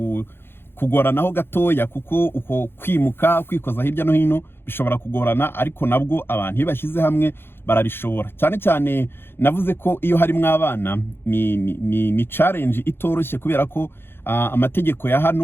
kugoranaho gatoya kuko uko kwimuka kwikoza hirya no hino bishobora kugorana, ariko nabwo abantu bashyize hamwe barabishobora. Cyane cyane navuze ko iyo harimo abana ni challenge itoroshye, kubera ko amategeko ya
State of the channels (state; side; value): late; right; 0.11 ms